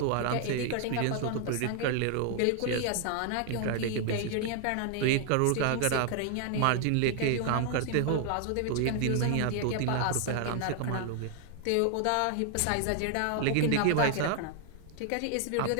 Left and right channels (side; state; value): both; different; correlation 0.00